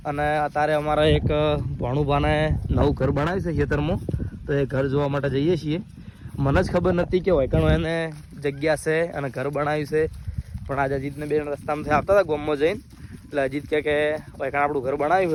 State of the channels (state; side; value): identical; both; correlation 1.00